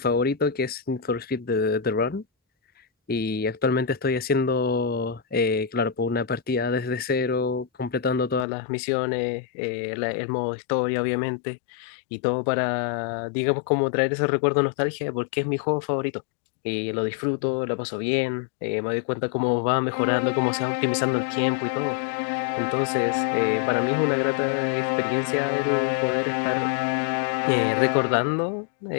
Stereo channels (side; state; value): right; drops out; at 8.5 s